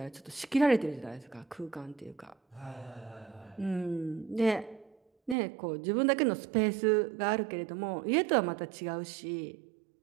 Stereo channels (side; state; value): left; drops out; at 5.4 s